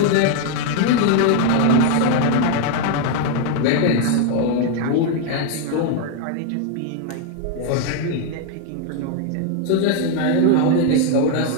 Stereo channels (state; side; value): different; both; correlation 0.01